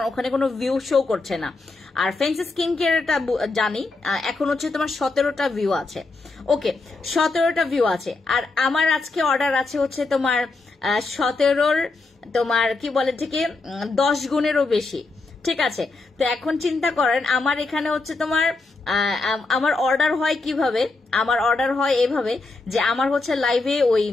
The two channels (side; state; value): right; quieter; 3.5 dB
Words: ওখানে কোনো ভিউ শো করছে না। আর ফ্যান্সি স্কিন কেয়ারটা জানি এখন হচ্ছে তোমার 17টা ভিউ আছে, ওকে 17টা ভিউ আছে। আর আমার আজকে অর্ডার আছে হচ্ছে তোমার 17র তোমার কি বলে থেকে 10 গুণেরও বেশি, ঠিক আছে? তো এখন চিন্তা করেন আমার এখানে হচ্ছে তোমার আমার অর্ডার হয় কিভাবে, আমার অর্ডার হয় এভাবে যে আমার হচ্ছে লাইভে ওই